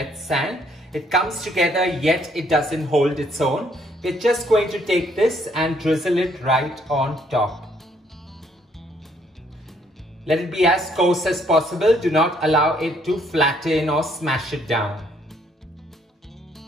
sand. It comes together yet it doesn't hold its own. We're just going to take this and drizzle it right on top. Let it be as coarse as possible. Do not allow it to flatten or smash it down.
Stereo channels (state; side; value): normal; both; correlation 0.67